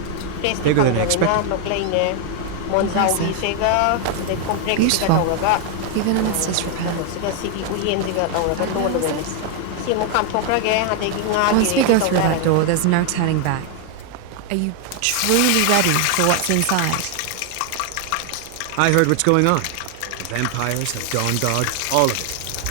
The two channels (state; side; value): different; both; correlation 0.00